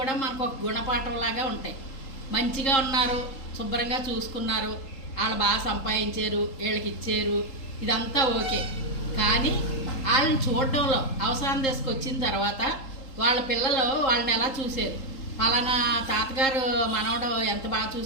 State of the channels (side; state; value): right; late; 3.8 ms